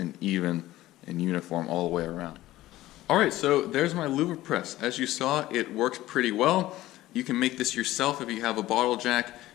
even and uniform all the way around. Alright, so there's my louver press. As you saw, it works pretty well. You can make this yourself if you have a bottle jack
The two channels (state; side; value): quieter; right; 16.1 dB